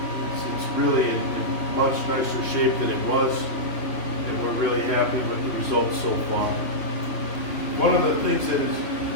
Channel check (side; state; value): right; late; 3.0 ms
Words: it's really in much nicer shape than it was, and we're really happy with the results so far. One of the things that